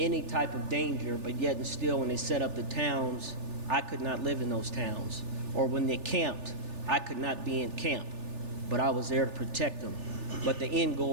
type of danger, but yet and still when they set up the towns, I could not live in those towns. Or when they camped, I could not be in camp, but I was there to protect them. But the end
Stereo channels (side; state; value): left; late; 3.4 ms